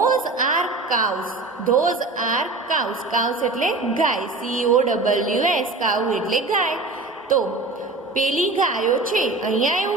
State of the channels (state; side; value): quieter; left; 3.4 dB